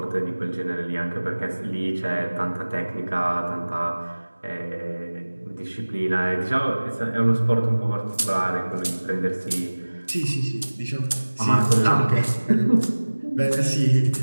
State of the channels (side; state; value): both; inverted; correlation -1.00